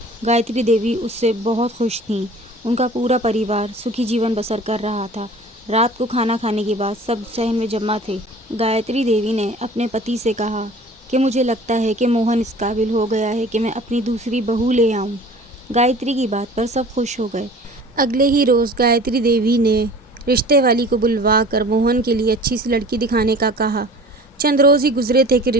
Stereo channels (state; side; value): normal; both; correlation 0.44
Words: गायत्री देवी उससे बहुत खुश थीं। उनका पूरा परिवार सुखी जीवन बसर कर रहा था। रात को खाना खाने के बाद सब सहन में जमा थे। गायत्री देवी ने अपने पति से कहा कि मुझे लगता है कि मोहन इस काबिल हो गया है कि मैं अपनी दूसरी बहू ले आऊं। गायत्री की बात पर सब खुश हो गए। अगले ही रोज़ गायत्री देवी ने रिश्ते वाली को बुलवा कर मोहन के लिए अच्छी सी लड़की दिखाने का कहा। चंद रोज़ ही गुजरे थे कि